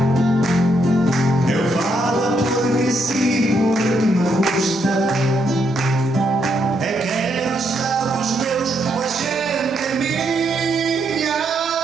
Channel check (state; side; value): normal; both; correlation 0.77